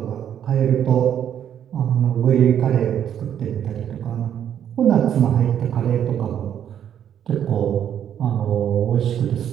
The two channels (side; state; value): left; quieter; 9.6 dB